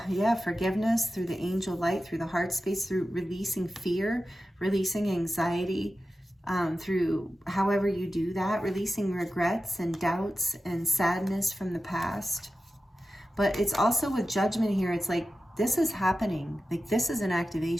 forgiveness, through the angel light, through the heart space, through releasing fear, releasing anxiety, through however you do that, releasing regrets and doubts and sadness from the past. But it's also with judgment here, it's like, this is happening. Like, this is an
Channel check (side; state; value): both; normal; correlation 0.93